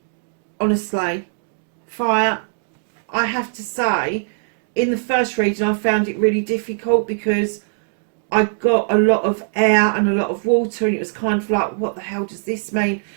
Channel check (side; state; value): left; silent; digital silence